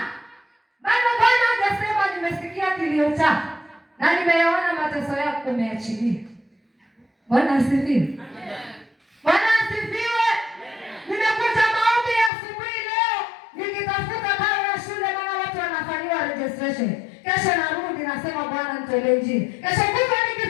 bado Bwana hajasema nimesikia kilio chako na nimeyaona mateso yako, umeachilia. Bwana asifiwe. Bwana asifiwe. Nimekuja maombi ya asubuhi leo nikitafuta karo ya shule, maana watu wanafanyiwa registration. Kesho narudi nasema Bwana nitolee njia. Kesho kutwa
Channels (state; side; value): drops out; right; at 12.3 s